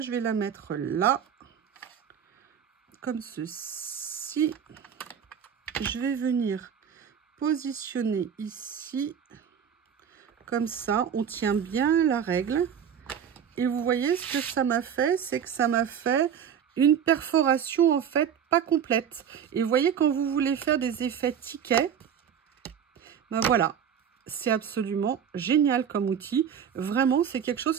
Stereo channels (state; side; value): quieter; left; 8.2 dB